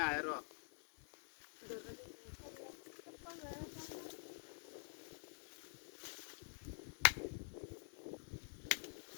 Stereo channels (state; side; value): silent; right; digital silence